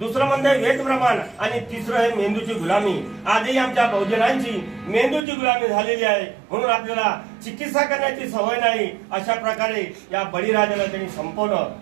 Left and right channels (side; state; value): left; drops out; at 5.2 s